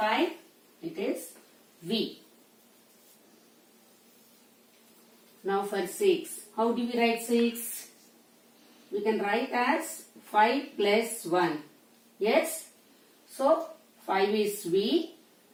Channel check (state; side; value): identical; both; correlation 1.00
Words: it is V. Now for 6. How do we write 6? We can write as 5 plus 1. Yes? So 5 is V.